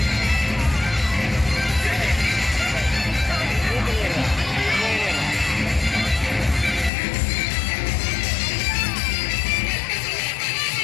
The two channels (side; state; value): right; drops out; at 6.9 s